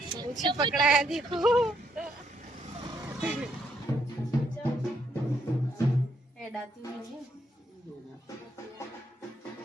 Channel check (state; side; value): normal; both; correlation 0.74